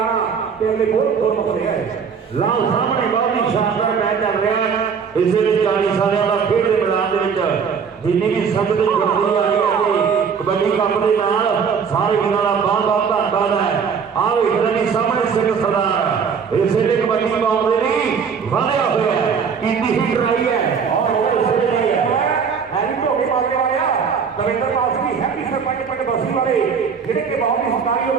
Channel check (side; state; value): left; quieter; 6.4 dB